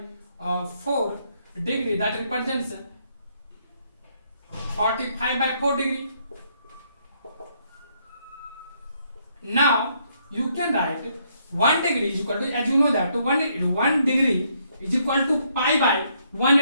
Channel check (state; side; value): inverted; both; correlation -0.72